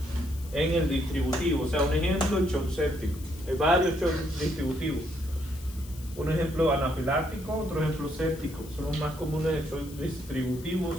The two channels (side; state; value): left; noise; hiss, 19 dB below the sound